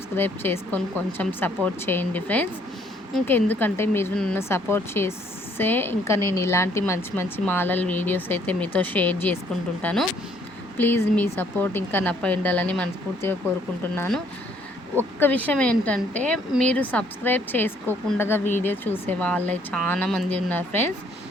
చేసుకొని కొంచెం సపోర్ట్ చేయండి ఫ్రెండ్స్. ఇంకెందుకంటే మీరు నన్ను సపోర్ట్ చేస్తే ఇంకా నేను ఇలాంటి మంచి మంచి మాలల వీడియోస్ అయితే మీతో షేర్ చేసుకుంటుంటాను. ప్లీజ్ మీ సపోర్ట్ ఇంకా నాపై ఉండాలని మనస్ఫూర్తిగా కోరుకుంటున్నాను. ఒక్క విషయం ఏంటంటే, మీరు సబ్స్క్రైబ్ చేసుకోకుండా వీడియో చూసే వాళ్ళే చాలామంది ఉన్నారు ఫ్రెండ్స్.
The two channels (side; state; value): both; normal; correlation 0.65